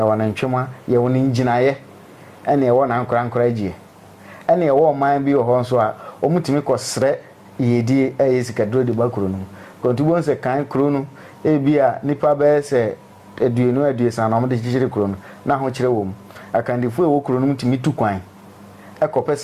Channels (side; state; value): both; identical; correlation 1.00